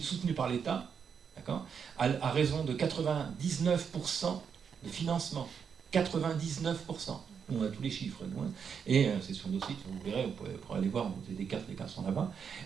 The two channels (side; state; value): left; quieter; 6.8 dB